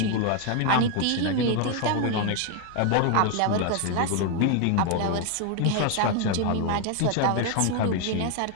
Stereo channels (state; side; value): different; both; correlation 0.01